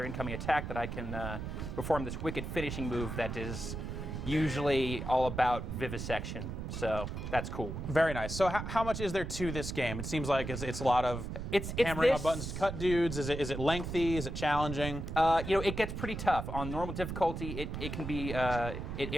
incoming attack that I can perform this wicked finishing move that is usually all about vivisection. So that's cool. Very nice. So how much is there to this game? It seems like it's a lot of hammering on buttons to cut dudes. Is it lengthy? Is it challenging? It gets pretty tough. On normal difficulty, it can be,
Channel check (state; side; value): noise; right; rumble, 5 dB below the sound